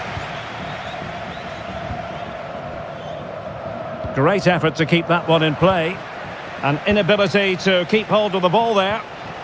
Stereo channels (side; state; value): both; identical; correlation 1.00